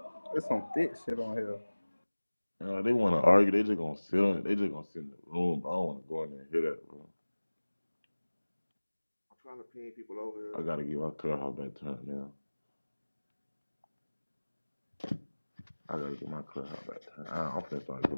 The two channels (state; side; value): inverted; both; correlation -1.00